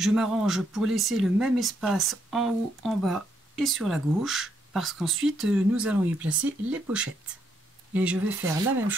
m'arrange pour laisser le même espace en haut, en bas et sur la gauche. parce qu'ensuite nous allons y placer les pochettes. Et je vais faire la même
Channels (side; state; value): both; normal; correlation 0.75